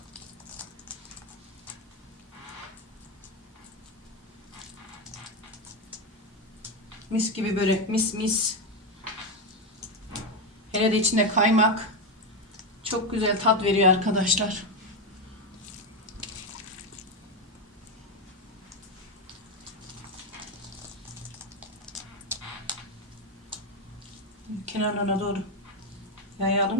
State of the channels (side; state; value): both; normal; correlation 0.10